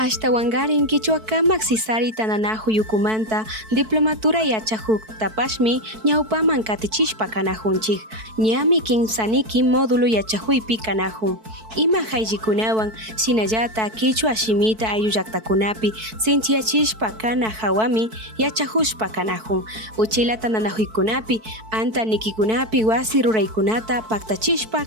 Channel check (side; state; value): left; late; 4.6 ms